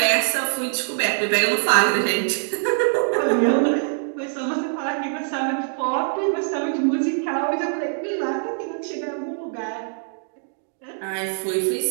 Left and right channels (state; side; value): silent; left; digital silence